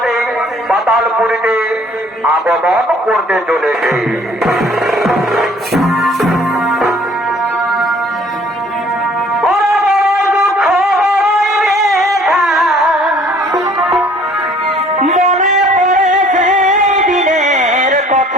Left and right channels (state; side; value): normal; both; correlation 0.56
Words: পাতালপুরীতে আগমন করতে চলেছে।